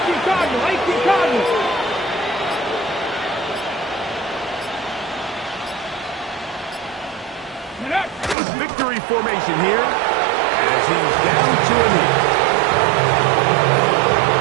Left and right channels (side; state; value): left; drops out; at 8.3 s